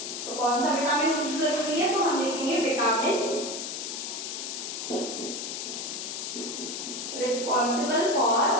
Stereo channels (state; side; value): noise; left; hiss, 5 dB below the sound